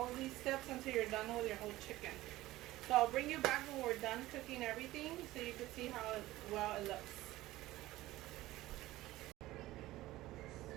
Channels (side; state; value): left; quieter; 17.0 dB